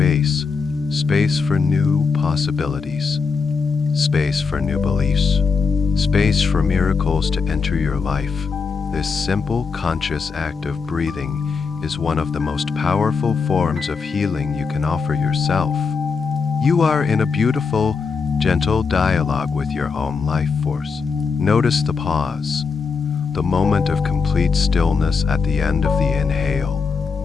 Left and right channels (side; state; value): right; quieter; 5.2 dB